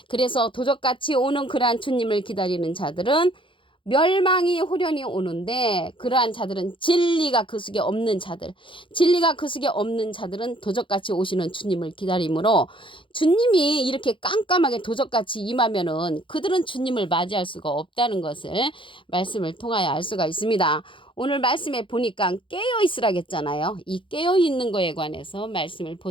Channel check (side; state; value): right; late; 0.25 ms